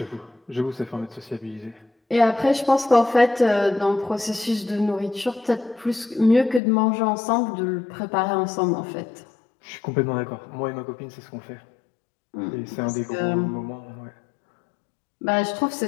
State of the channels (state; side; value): drops out; right; at 6.6 s